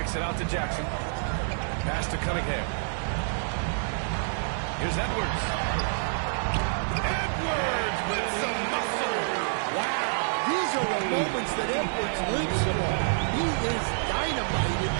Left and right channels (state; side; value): silent; left; digital silence